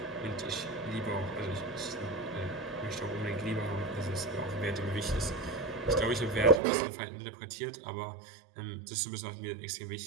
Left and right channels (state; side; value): drops out; left; at 6.6 s